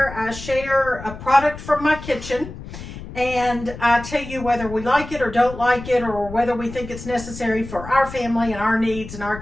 I share a product from my kitchen, and I tell you whether we like it or don't like it, or whether we think it's necessary for our family and our needs in our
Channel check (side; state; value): left; noise; rumble, 12 dB below the sound